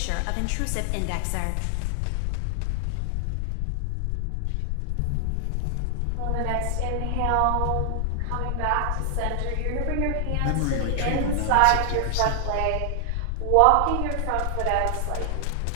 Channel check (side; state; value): both; different; correlation 0.00